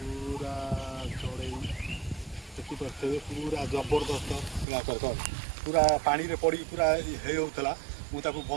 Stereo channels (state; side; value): drops out; left; at 4.7 s